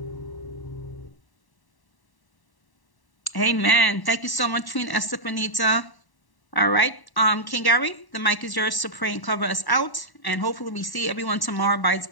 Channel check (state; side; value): late; right; 1.1 ms